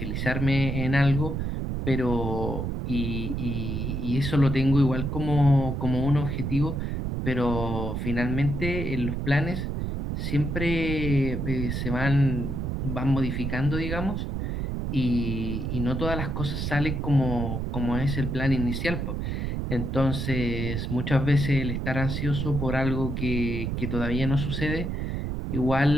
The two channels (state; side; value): noise; right; rumble, 2 dB below the sound